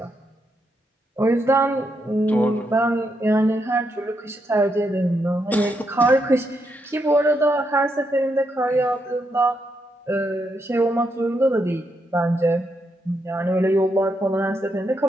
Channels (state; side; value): normal; both; correlation 0.80